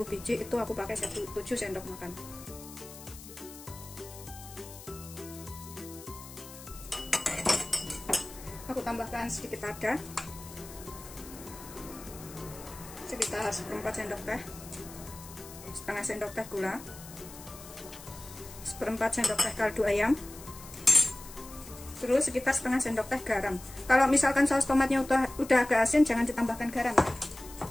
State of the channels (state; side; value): noise; left; hiss, 16 dB below the sound